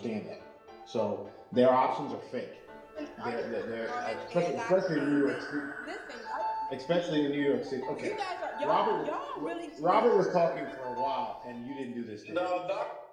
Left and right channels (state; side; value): identical; both; correlation 1.00